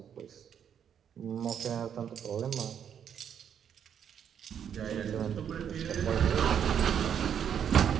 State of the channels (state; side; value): quieter; left; 8.5 dB